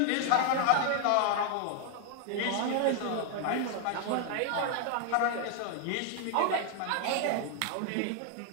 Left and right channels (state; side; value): different; both; correlation 0.00